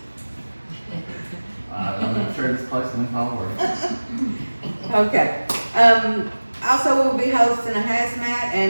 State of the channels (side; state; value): both; inverted; correlation -1.00